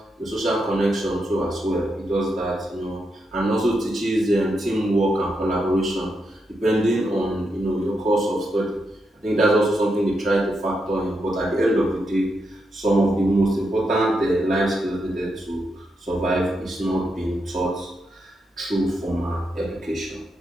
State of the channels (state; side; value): normal; both; correlation 0.83